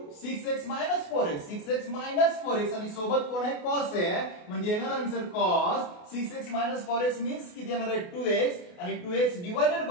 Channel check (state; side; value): late; right; 28 ms